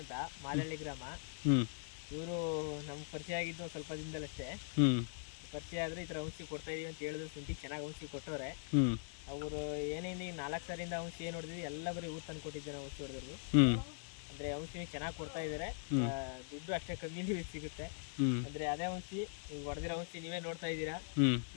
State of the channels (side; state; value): right; silent; 51 dB below the other